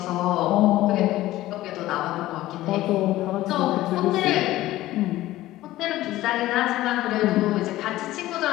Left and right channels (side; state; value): right; quieter; 15.9 dB